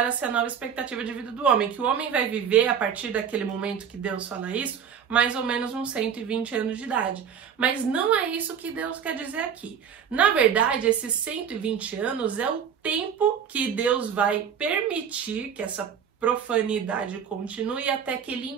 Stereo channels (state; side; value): quieter; left; 7.7 dB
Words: ser a nova expectativa de vida do homem, que o homem vai viver a partir daquele momento que Deus fala isso, mais ou menos uns 120 anos de idade. Mas não é isso que Deus quer dizer aqui. Na verdade, esses 120 anos é o tempo que Deus vai permitir que essa profanidade continue até que ele